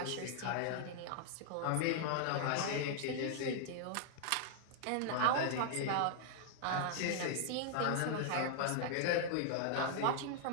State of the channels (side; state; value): both; different; correlation 0.00